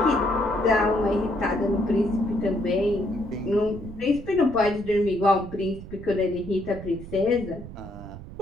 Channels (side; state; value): right; noise; rumble, 13 dB below the sound